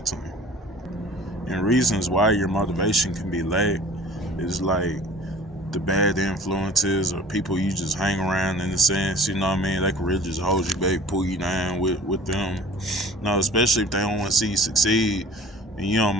tuned. And reasons why your motivation can be lacked is like the bad influences or people you just hang around in a sense, they can really just hold you back, pull you down with them. Especially if they don't want to see you succeed and you don't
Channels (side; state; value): both; normal; correlation 0.45